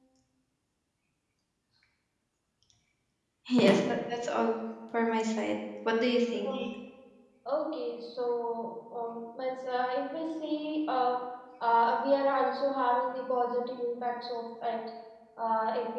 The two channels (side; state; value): both; identical; correlation 1.00